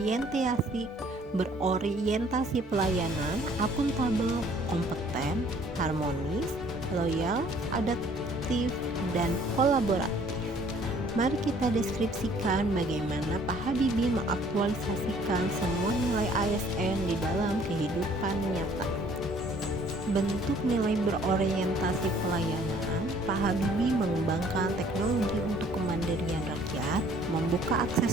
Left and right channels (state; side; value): normal; both; correlation 0.58